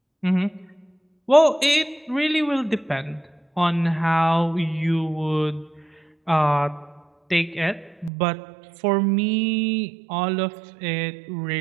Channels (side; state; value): left; drops out; at 8.1 s